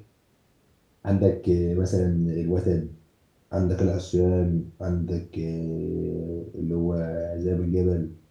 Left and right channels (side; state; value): both; identical; correlation 1.00